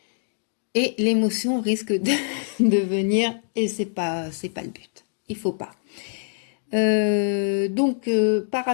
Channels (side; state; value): right; silent; digital silence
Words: Et l'émotion risque de venir et c'est pas le but. Il faut pas. Par